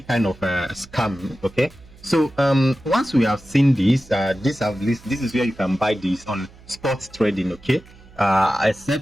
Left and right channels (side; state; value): right; noise; hum, 23 dB below the sound